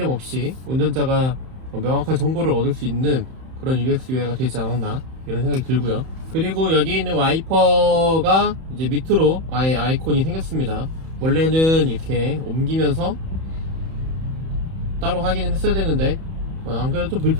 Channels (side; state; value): left; late; 31 ms